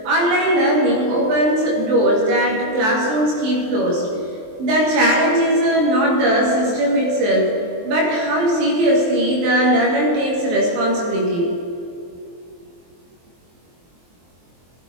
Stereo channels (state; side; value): late; left; 23 ms